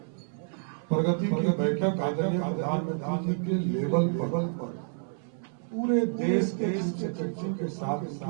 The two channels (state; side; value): silent; left; 58 dB below the other